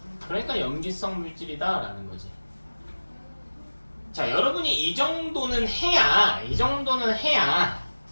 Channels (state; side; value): inverted; both; correlation -1.00